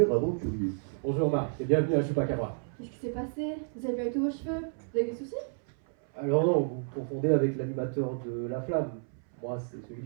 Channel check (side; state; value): left; silent; 57 dB below the other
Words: aventurier. Bonjour Marc, et bienvenue à Chupacabra. Qu'est-ce qui s'est passé? Vous avez perdu tous vos cheveux? Vous avez des soucis? Alors non, vous confondez avec l'animateur de La Flamme. Moi, c'est celui